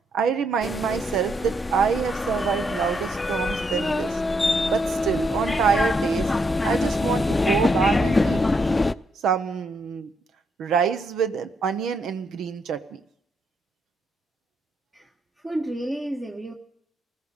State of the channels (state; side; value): normal; both; correlation 0.77